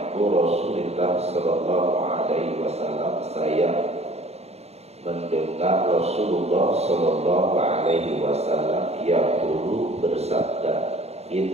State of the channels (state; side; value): late; left; 0.31 ms